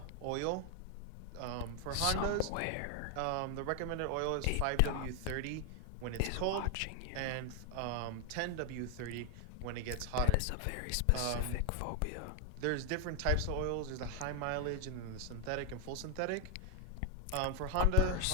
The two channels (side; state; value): both; different; correlation 0.00